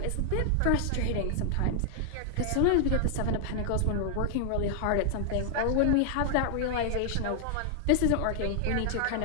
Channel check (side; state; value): both; different; correlation 0.00